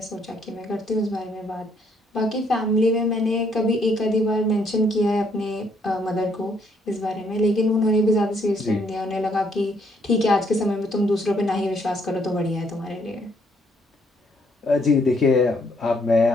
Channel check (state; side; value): normal; both; correlation 0.69